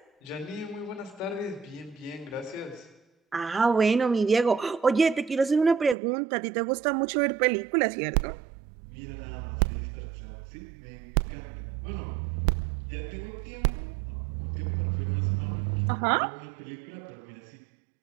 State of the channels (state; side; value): drops out; left; at 6.0 s